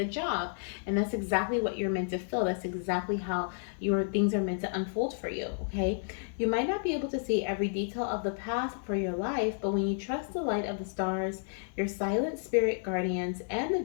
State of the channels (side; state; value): right; silent; 57 dB below the other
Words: job. And that's exactly what you're meant to feel. That's exactly how your things are meant to unfold for you, okay? You might not be able to see every detail of the path for your life, but when you trust the light of the stars, your silent spirit guardians, and the